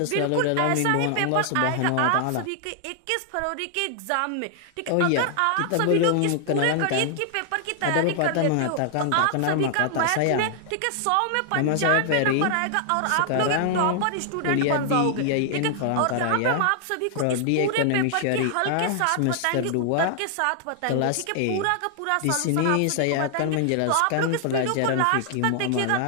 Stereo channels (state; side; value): different; both; correlation 0.00